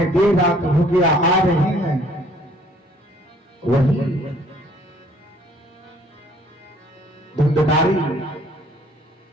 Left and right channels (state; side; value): normal; both; correlation 0.59